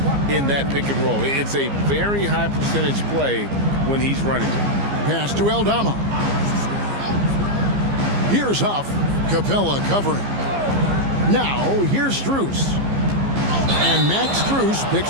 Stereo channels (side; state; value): left; late; 15 ms